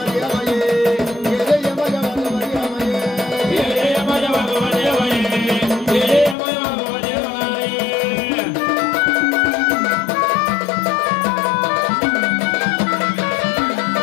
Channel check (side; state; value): right; drops out; at 6.4 s